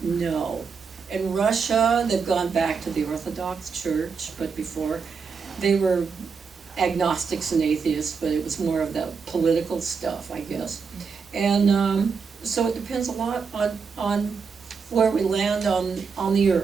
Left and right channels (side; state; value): left; quieter; 5.5 dB